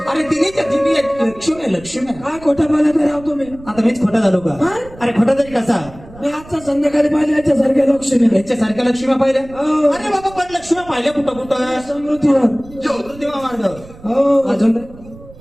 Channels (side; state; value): right; noise; rumble, 20 dB below the sound